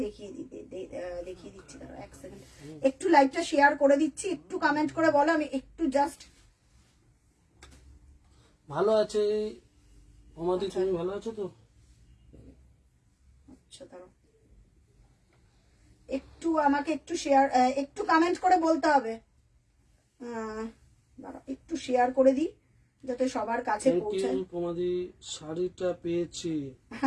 দেখিয়ে দিচ্ছি, দাঁড়াও এক সেকেন্ড। একটু লাইভটা শেয়ার করে দিচ্ছি, একটু কমেন্ট করে বলো, আমি একটু জাস্ট। ভালো আছে তোমাদি, তুমি ভালো আছো তো? আচ্ছা দাঁড়াও, একটু আমাকে একটু শেয়ার, একটু কমেন্ট করে বলতে হবে। দাঁড়াও একটু শেয়ার করে দিই যাতে সবার কাছে পৌঁছায়। তোমাদি শাড়িটা পেয়েছি,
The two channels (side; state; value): both; identical; correlation 1.00